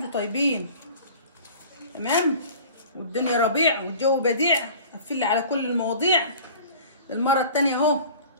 طيبين. تمام. والدنيا ربيع والجو بديع. قفل لي على كل المواضيع المره الثانيه اهو.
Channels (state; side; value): inverted; both; correlation -0.43